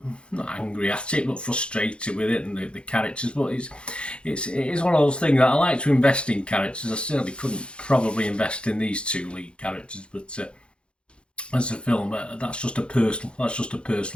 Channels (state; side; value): late; right; 0.056 ms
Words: not angry at it, but frustrated with it and the characters. But it is one of those things that I like to invest in characters. I certainly couldn't probably invest in these two lead characters, but as a film, that's just a